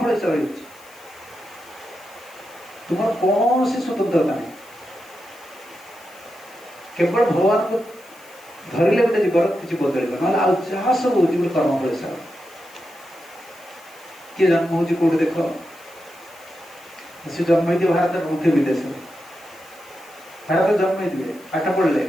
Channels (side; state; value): left; noise; hiss, 24 dB below the sound